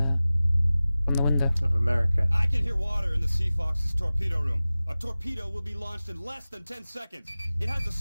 from the window. Of America. I can hear water in the Sea Fox's torpedo room. A torpedo will be launched in less than 10 seconds. It has a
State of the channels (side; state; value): both; inverted; correlation -0.97